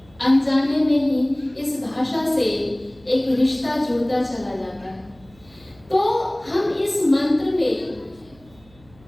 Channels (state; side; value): noise; right; hum, 27 dB below the sound